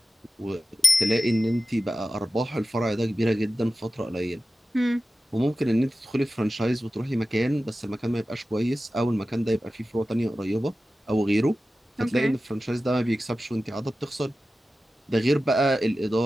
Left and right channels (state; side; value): normal; both; correlation 0.94